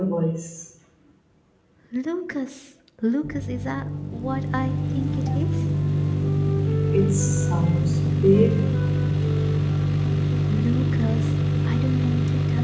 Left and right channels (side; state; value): both; identical; correlation 1.00